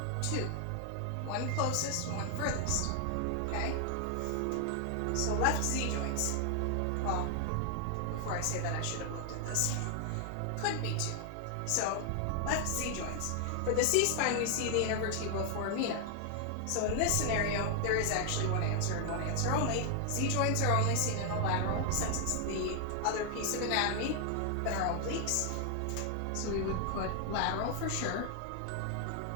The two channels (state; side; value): different; both; correlation 0.00